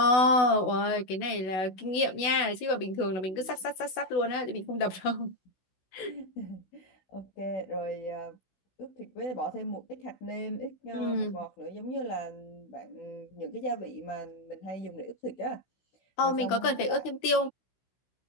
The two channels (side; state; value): right; late; 16 ms